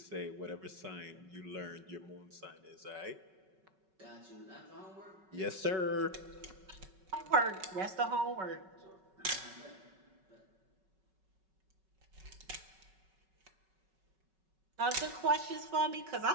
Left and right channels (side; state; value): left; late; 5.3 ms